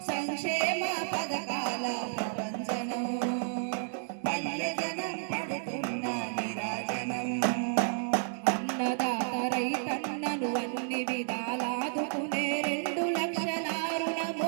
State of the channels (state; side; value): silent; left; digital silence